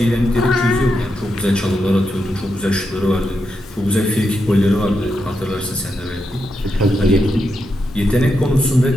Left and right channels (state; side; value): normal; both; correlation 0.85